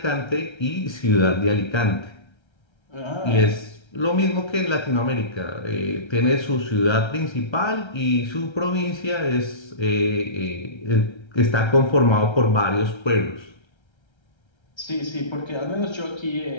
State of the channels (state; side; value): late; right; 1.3 ms